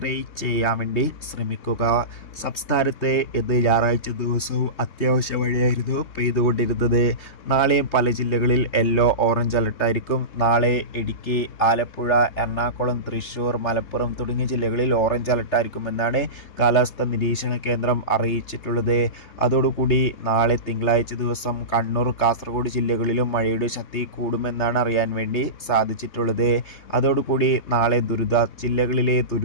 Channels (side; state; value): right; late; 3.3 ms